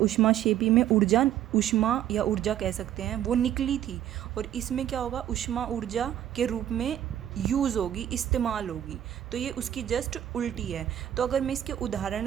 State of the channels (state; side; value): quieter; left; 11.3 dB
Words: में ऊष्मा या ऊर्जा कह सकते हैं वो निकली थी, और इसमें क्या होगा, ऊष्मा ऊर्जा के रूप में यूज़ होगी, इस्तेमाल होगी। तो ये उसकी जस्ट उल्टी है। तो अगर मैं इसके